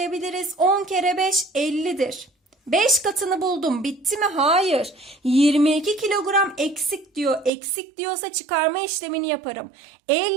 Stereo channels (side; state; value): left; drops out; at 7.5 s